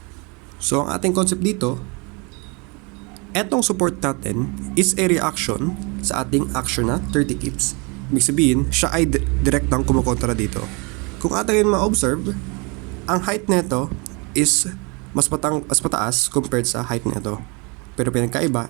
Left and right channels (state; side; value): quieter; left; 30.4 dB